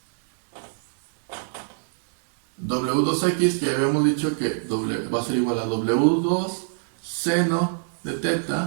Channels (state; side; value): silent; left; 62 dB below the other